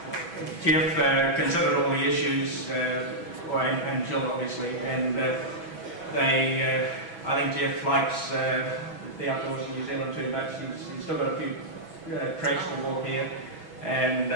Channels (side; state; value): right; late; 6.1 ms